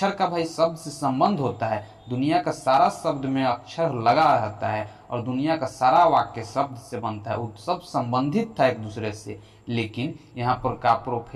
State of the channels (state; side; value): identical; both; correlation 1.00